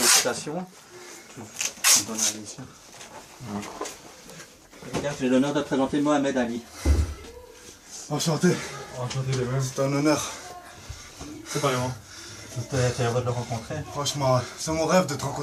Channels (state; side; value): identical; both; correlation 1.00